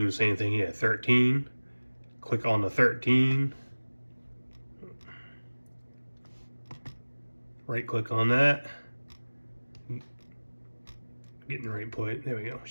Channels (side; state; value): both; inverted; correlation -1.00